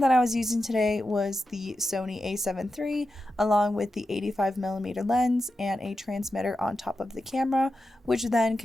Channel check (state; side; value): normal; both; correlation 0.90